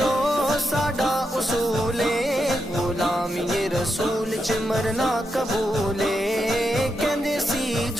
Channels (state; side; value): normal; both; correlation 0.85